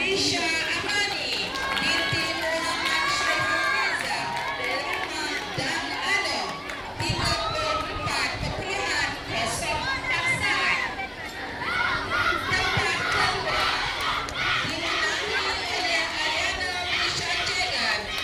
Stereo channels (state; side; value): identical; both; correlation 1.00